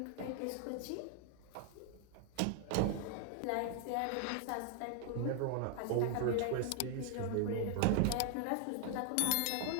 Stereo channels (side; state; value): both; different; correlation 0.00